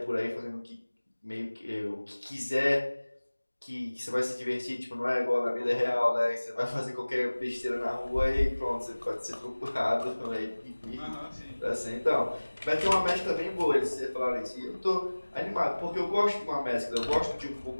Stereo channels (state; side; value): inverted; both; correlation -1.00